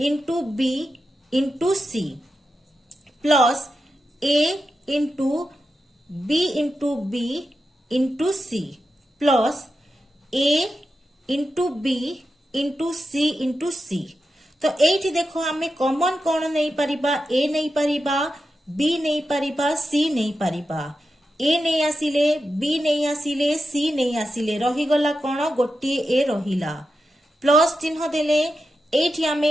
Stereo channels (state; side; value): normal; both; correlation 0.89